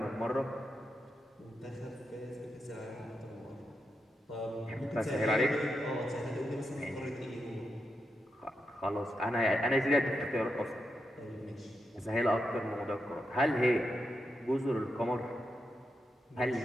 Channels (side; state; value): both; normal; correlation 0.85